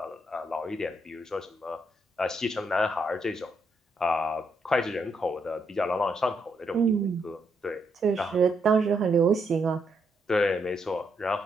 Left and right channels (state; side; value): normal; both; correlation 0.78